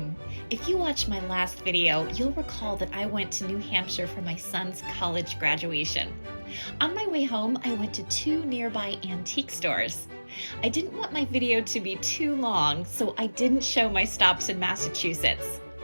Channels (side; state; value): both; inverted; correlation -1.00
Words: If you watched my last video, you'll recall that I went to New Hampshire for my son's college graduation. On my way home, I went to 2 nearby antique stores. I didn't want my video to be too long, so I didn't show my stops in Massachusetts.